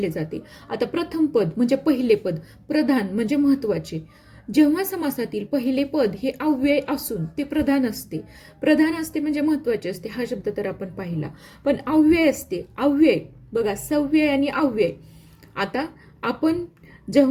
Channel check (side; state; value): both; identical; correlation 1.00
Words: जाते. आता प्रथम पद म्हणजे पहिले पद, प्रधान म्हणजे महत्वाचे. जेव्हा समासातील पहिले पद हे अव्यय असून ते प्रधान असते म्हणजे महत्वाचे असते, हा शब्द तर आपण पाहिला. पण अव्यय असते, अव्यय बघा, सव्यय आणि अव्यय. आता